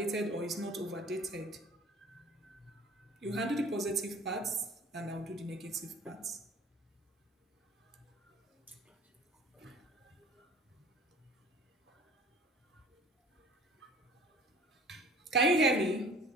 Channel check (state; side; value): normal; both; correlation 0.48